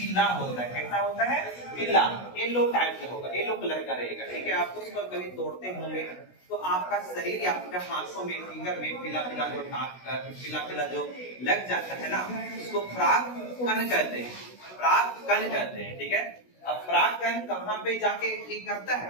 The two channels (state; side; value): late; right; 16 ms